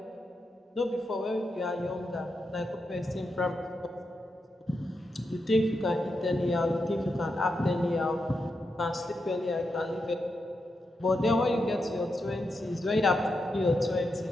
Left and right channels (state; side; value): normal; both; correlation 0.86